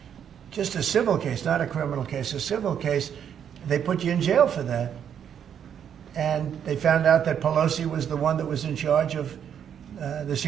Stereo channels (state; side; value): quieter; left; 8.6 dB